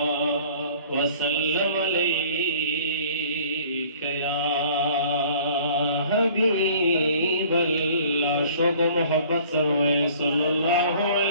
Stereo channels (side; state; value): both; inverted; correlation -0.51